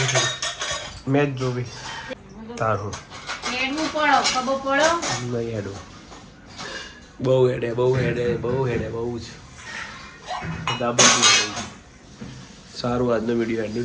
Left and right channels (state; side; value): identical; both; correlation 1.00